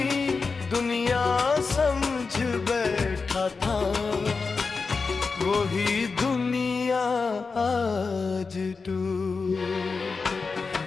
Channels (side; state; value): right; quieter; 4.6 dB